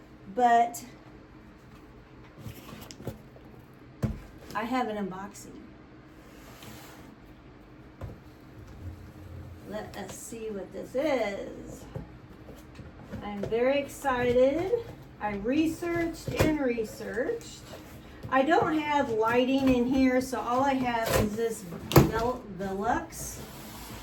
but I have an unboxing. Let us see what this is. I'm very excited. I researched and researched. I don't have lighting in here, so all I have is this Velux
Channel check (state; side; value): identical; both; correlation 1.00